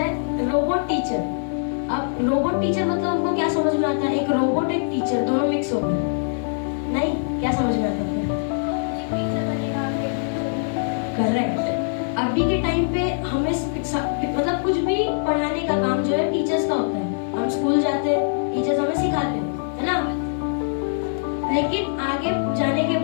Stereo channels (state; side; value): silent; right; 63 dB below the other